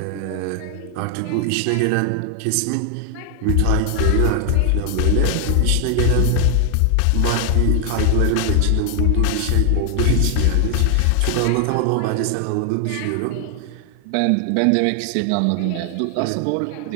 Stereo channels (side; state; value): both; different; correlation 0.00